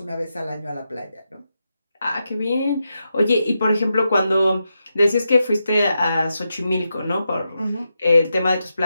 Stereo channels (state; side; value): inverted; both; correlation -0.87